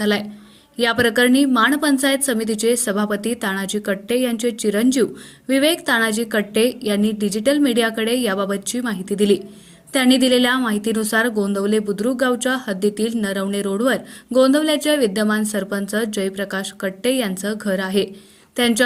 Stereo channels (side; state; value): both; identical; correlation 1.00